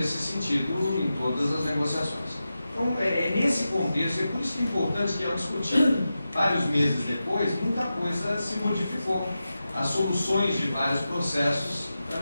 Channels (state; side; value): inverted; both; correlation -0.92